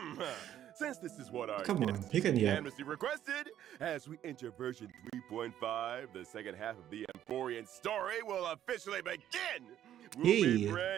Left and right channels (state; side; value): quieter; left; 11.3 dB